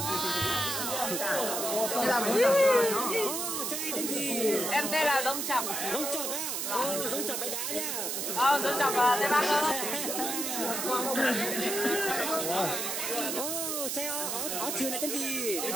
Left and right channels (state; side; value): noise; right; hiss, 2 dB below the sound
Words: Ô, trai tên gì? Em tên là Giống Chọc. Giống Chọc á? Ô, Giống Chọc bãi đá nhá. Giống Chọc Tây Bắc ơi. Ô, trai áo trường này tên gì?